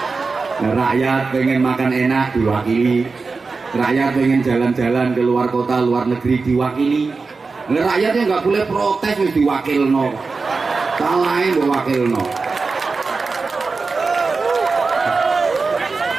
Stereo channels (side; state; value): left; quieter; 4.3 dB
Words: rakyat pengen makan enak diwakili, rakyat pengen jalan-jalan ke luar kota, luar negeri diwakili. Rakyatnya nggak boleh protes, wis diwakilno. Salahe mbok wakilno.